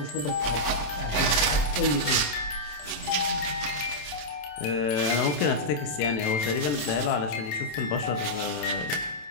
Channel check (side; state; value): right; late; 27 ms